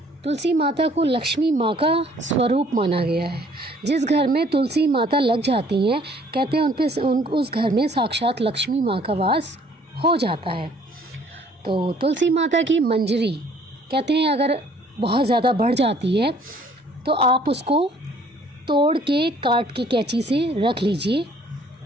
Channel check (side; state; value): both; normal; correlation 0.59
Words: तुलसी माता को लक्ष्मी माँ का स्वरूप माना गया है। जिस घर में तुलसी माता लग जाती हैं, कहते हैं उस घर में साक्षात लक्ष्मी माँ का वास हो जाता है। तो तुलसी माता की मंजरी कहते हैं अगर बहुत ज़्यादा बढ़ जाती है तो आप उसको तोड़ के काट के कैंची से रख लीजिए